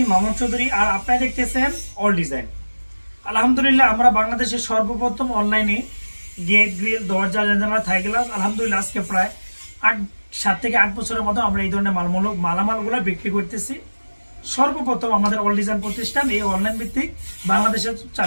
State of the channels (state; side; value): inverted; both; correlation -1.00